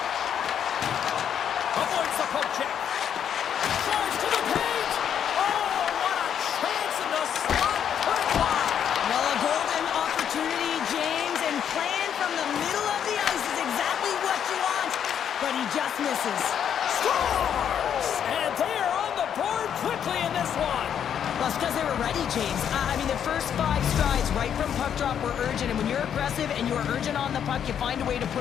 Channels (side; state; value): right; quieter; 8.8 dB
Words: Avoids the poke check. Drives to the paint. Oh, what a chance in the slot. Put it wide. Well, a golden opportunity, James, and playing from the middle of the ice is exactly what you want, but he just misses. Scores! And they are on the board quickly in this one. Well, it's because they were ready, James. I mean, the first 5 strides right from puck drop were urgent, and when you're aggressive and you're urgent on the puck, you find a way to